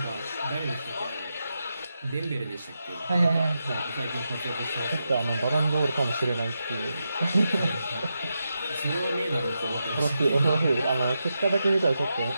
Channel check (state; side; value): inverted; both; correlation -0.87